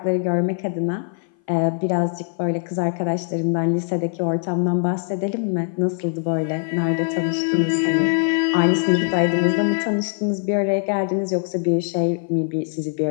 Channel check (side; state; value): right; silent; 58 dB below the other